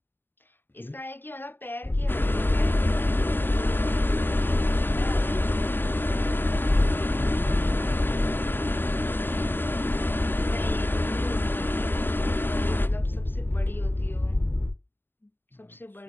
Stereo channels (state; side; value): late; right; 0.097 ms